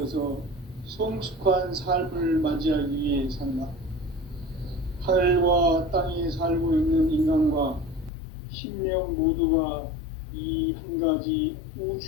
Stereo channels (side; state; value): right; drops out; at 8.1 s